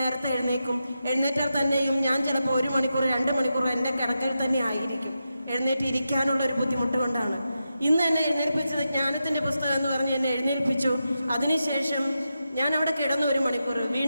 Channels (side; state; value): both; inverted; correlation -0.88